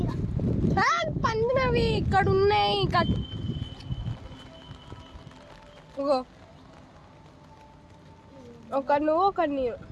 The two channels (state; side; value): identical; both; correlation 1.00